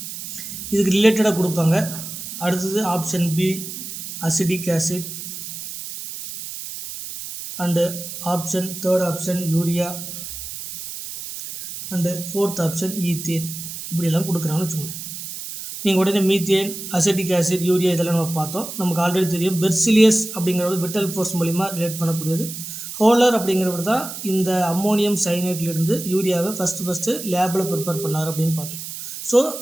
இதுக்கு ரிலேட்டடாக கொடுப்பாங்க. அடுத்தது option B acidic acid, and third option urea, and fourth option ethane. இப்படியெல்லாம் கொடுக்குறாங்கன்னு வச்சுக்கோங்க. நீங்கள் உடனே மீத்தேன், அசிட்டிக் ஆசிட், யூரியா இதெல்லாம் நம்ம பார்த்தோம். நமக்கு ஆல்ரெடி தெரியும் பெர்சிலியஸ் அப்படிங்கிறது விட்டல் ஃபோர்ஸ் மூலிமா ரிலேட் பண்ணக்கூடியது. ஹோலர் அப்படிங்கிறவர் தான் இந்த அம்மோனியம் சைனேட்லேருந்து யூரியாவை ஃபஸ்ட்டு லேபில் ப்ரிப்பேர் பண்ணார் அப்படின்னு பார்த்தோம். ஸோ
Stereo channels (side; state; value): right; noise; hiss, 9 dB below the sound